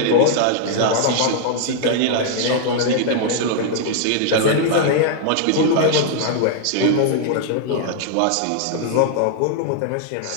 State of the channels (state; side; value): different; both; correlation 0.00